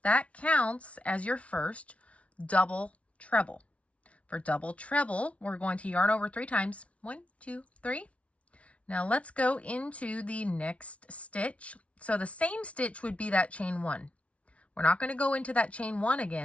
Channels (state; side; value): late; right; 0.063 ms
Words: That counts as your first double treble. For double treble, we're going to yarn over 3 times. 1, 2, 3. Now let's go into the next stitch. So the same stitch would be that chain 1. We're not going to go into that chain 1